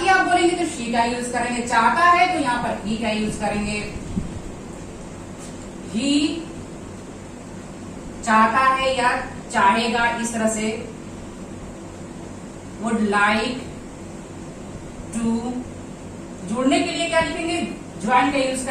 आप बोलेंगे तो शी का यूज करेंगे, चाहता है तो यहां पर ही का यूज करेंगे। ही चाहता है या चाहेगा, इस तरह से वुड लाइक टू। जुड़ने के लिए क्या लिखेंगे, ज्वाइन का यूज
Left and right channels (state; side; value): identical; both; correlation 1.00